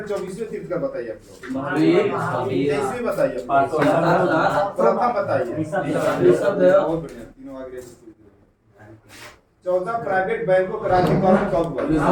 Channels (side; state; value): both; identical; correlation 1.00